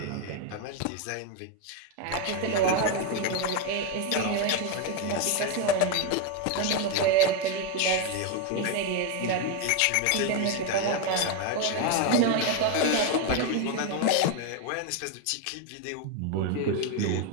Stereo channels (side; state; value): both; different; correlation 0.02